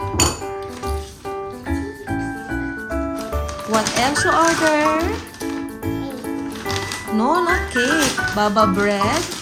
What else you ordered? No, not cake. Baba bread.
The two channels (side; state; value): both; identical; correlation 1.00